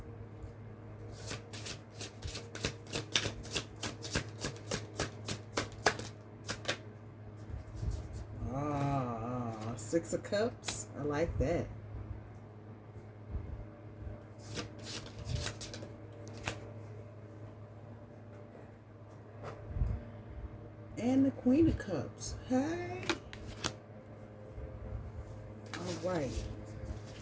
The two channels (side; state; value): both; identical; correlation 1.00